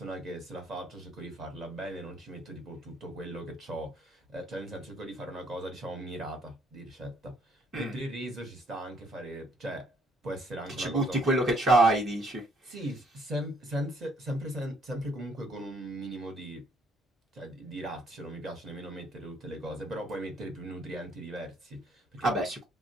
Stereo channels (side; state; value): both; normal; correlation 0.66